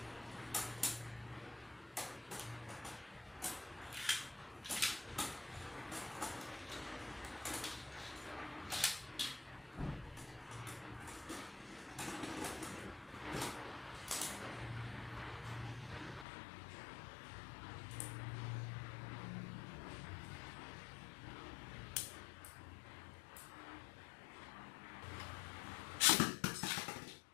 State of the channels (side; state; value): right; drops out; at 16.2 s